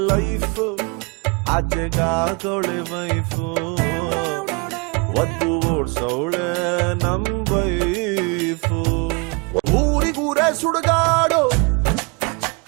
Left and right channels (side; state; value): left; quieter; 31.2 dB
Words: ಲೈಫು ಆಚೆಗಾಗೋಳೆ ವೈಫು ಒದ್ದು ಓಡ್ಸೌಳೆ ನಮ್ ವೈಫು ಊರಿಗೂರೇ ಸುಡುಗಾಡು